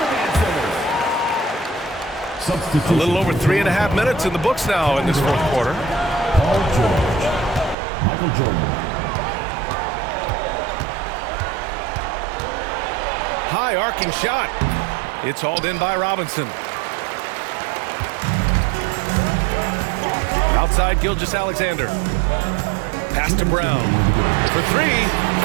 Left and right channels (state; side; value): drops out; left; at 7.8 s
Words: Substitution. A little over 3.5 minutes in the books now in this fourth quarter. Paul George. Michael Jordan. High arcing shot. It's hauled in by Robinson. Outside Gilgeous-Alexander. Pass to Brown. For three.